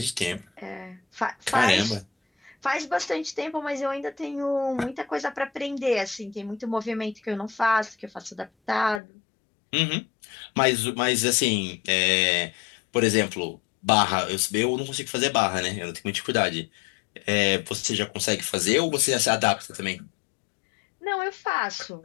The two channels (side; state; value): right; drops out; at 9.0 s